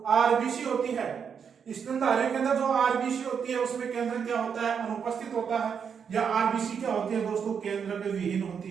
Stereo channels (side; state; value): left; quieter; 6.9 dB